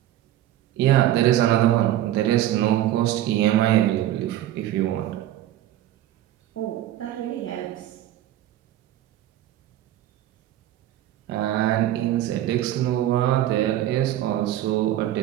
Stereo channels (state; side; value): quieter; left; 13.1 dB